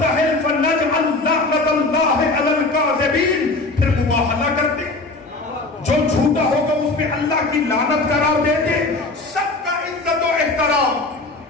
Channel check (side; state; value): right; quieter; 3.2 dB